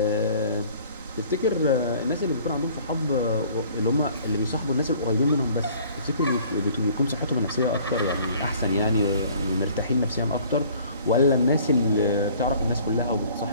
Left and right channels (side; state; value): both; inverted; correlation -0.53